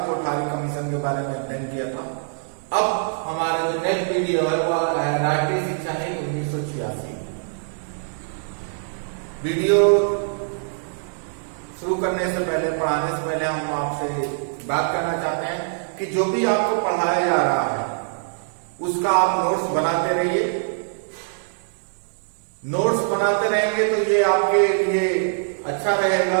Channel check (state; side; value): silent; left; digital silence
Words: कोठारी कमीशन के बारे में अध्ययन किया था। अब हमारा जो नेक्स्ट वीडियो है वह है राष्ट्रीय शिक्षा नीति 1986। वीडियो शुरू करने से पहले, पढ़ाने से पहले हम आपसे बात करना चाहते हैं कि जो भी आपको पढ़ाया जा रहा है उसका आप नोट्स बनाते रहिए। नोट्स बनाते रहेंगे तो ये आपके लिए अच्छा